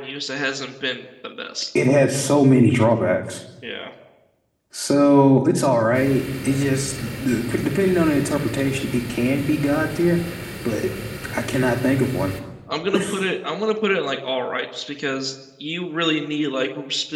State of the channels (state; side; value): identical; both; correlation 1.00